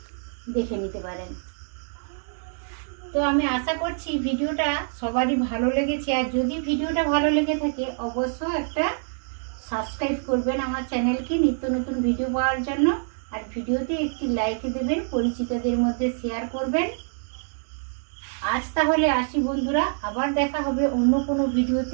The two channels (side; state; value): left; silent; digital silence